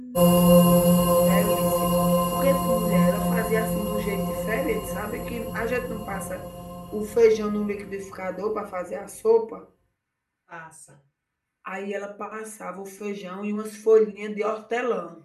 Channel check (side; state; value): both; identical; correlation 1.00